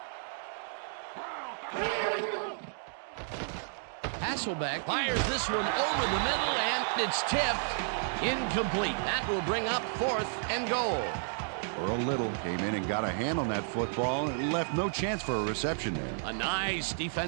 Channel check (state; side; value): silent; left; digital silence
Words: 31. Hasselbeck fires this one over the middle, and it's tipped. Incomplete. That will bring up 4th and goal. Earl Little came in and got a hand on that football and left no chance for a reception there. A nice